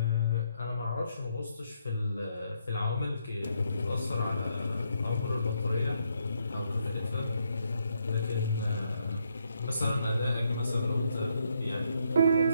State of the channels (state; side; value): inverted; both; correlation -0.76